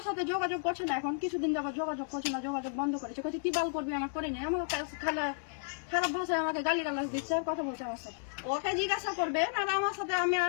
সাথে যোগাযোগ করছে না, এখন কিছুদিন যাবত যোগাযোগ করছে না, যোগাযোগ বন্ধ করেছে। কাছে কি বাল করবি, আমার করে নেই। আমার খারাপ ভাষায় আমাকে গালিগালাজ দিচ্ছে, কথা বলছে আমার সাথে। ওকে জিজ্ঞাসা করবে আর আমার সাথে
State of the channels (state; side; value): silent; right; 56 dB below the other